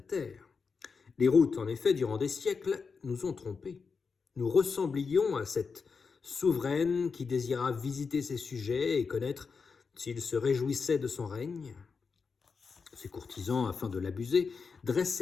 Terre. Les routes, en effet, durant des siècles, nous ont trompés. Nous ressemblions à cette souveraine qui désira visiter ses sujets et connaître s'ils se réjouissaient de son règne. Ses courtisans, afin de l'abuser,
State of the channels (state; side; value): quieter; right; 5.2 dB